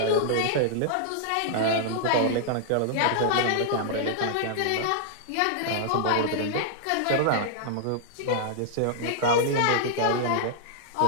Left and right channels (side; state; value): both; different; correlation -0.01